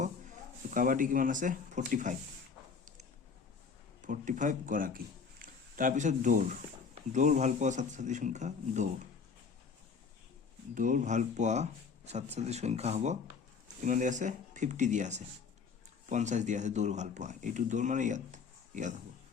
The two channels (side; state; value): right; quieter; 5.5 dB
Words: কাবাডী কিমান আছে 45 গৰাকী। তাৰপিছত দৌৰ ভাল পোৱা ছাত্ৰ-ছাত্ৰীৰ সংখ্যা, দৌৰ ভাল পোৱা ছাত্ৰ-ছাত্ৰীৰ সংখ্যা হ'ব কিমান দিয়া আছে 50 দিয়া আছে, 50 দিয়া আছে দৌৰ ভাল পোৱা। এইটো দৌৰ মানে ইয়াত হ'ব